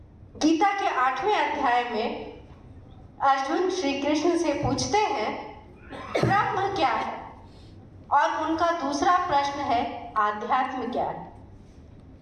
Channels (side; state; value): both; identical; correlation 1.00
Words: गीता के 8वें अध्याय में अर्जुन श्री कृष्ण से पूछते हैं ब्रह्म क्या है, और उनका दूसरा प्रश्न है आध्यात्म क्या है।